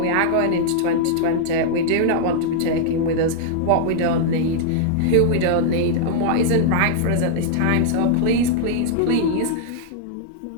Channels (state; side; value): different; both; correlation -0.01